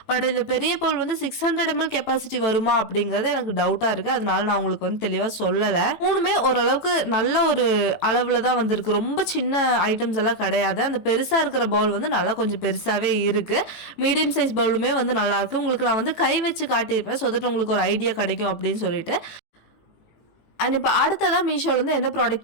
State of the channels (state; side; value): late; right; 18 ms